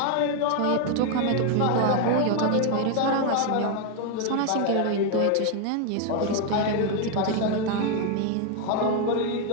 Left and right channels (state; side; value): different; both; correlation 0.01